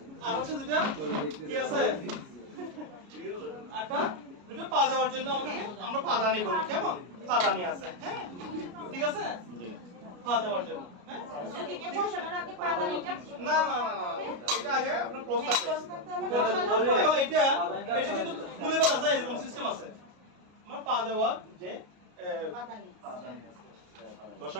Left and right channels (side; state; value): left; late; 33 ms